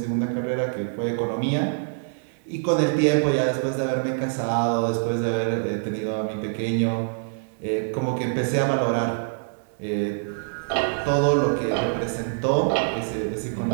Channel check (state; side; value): silent; left; digital silence